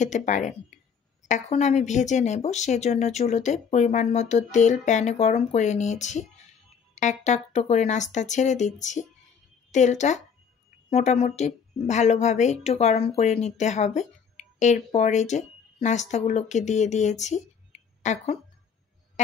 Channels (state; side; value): quieter; right; 6.6 dB